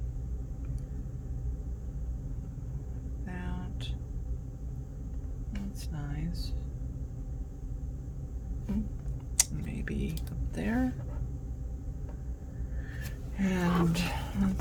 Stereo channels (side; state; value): both; identical; correlation 1.00